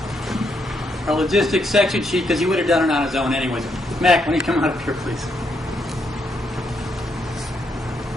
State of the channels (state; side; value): normal; both; correlation 0.77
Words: logistics section sheet because he would have done it on his own anyways. Mac, when you come out up here, please.